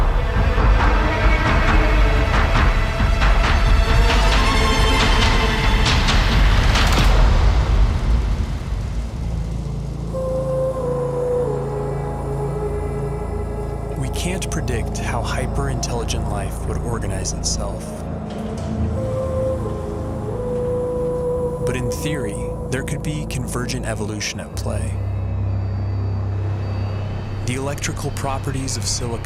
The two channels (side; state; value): both; identical; correlation 1.00